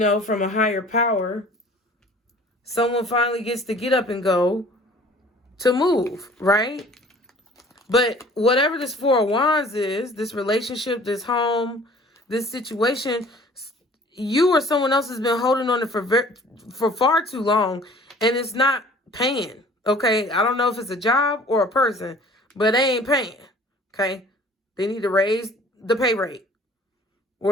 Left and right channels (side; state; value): both; normal; correlation 0.50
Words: from a higher power, someone finally gets to get up and go to move, right? But whatever this Four of Wands is, this relationship, this home, this situation, you or someone else has been holding on it for far too long, and it's not paying, okay? I don't know if it's a job or a person, but they ain't paying, okay? They need to raise the pay rate,